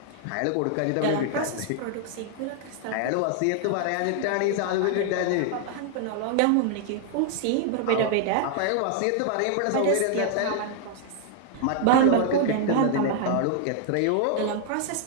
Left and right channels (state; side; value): different; both; correlation 0.00